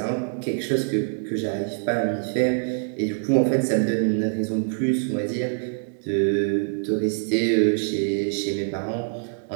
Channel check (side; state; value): left; silent; digital silence